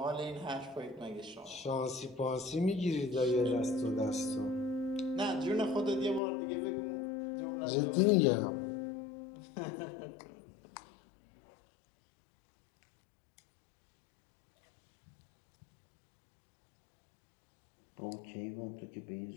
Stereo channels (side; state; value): right; drops out; at 6.2 s